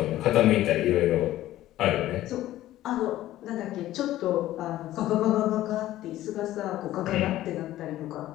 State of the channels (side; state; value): right; quieter; 14.5 dB